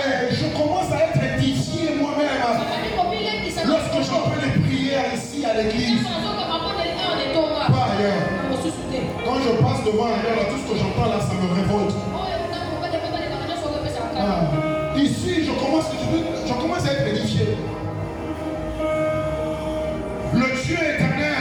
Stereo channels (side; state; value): both; identical; correlation 1.00